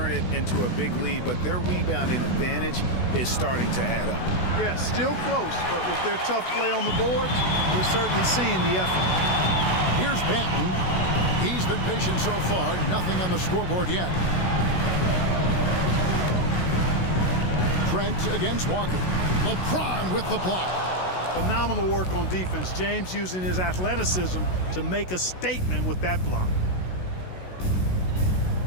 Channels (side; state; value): right; late; 16 ms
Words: it into a big lead, but their rebounding advantage is starting to add up. Yeah, still close, but with their tough play on the boards, we're certainly seeing the effort. Here's Banton. He's been patient so far, nothing on the scoreboard yet. Trent against Walker. LeBron with the block. Phenomenal work on defense. James using his athleticism to make a statement with that block.